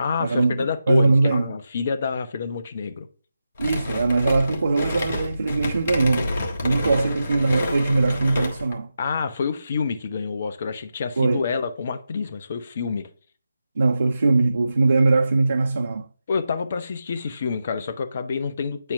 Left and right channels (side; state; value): both; inverted; correlation -0.89